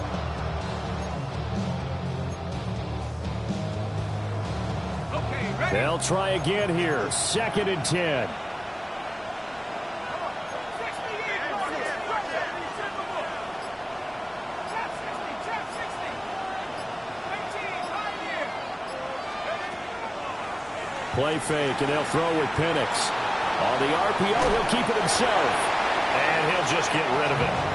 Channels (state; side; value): identical; both; correlation 1.00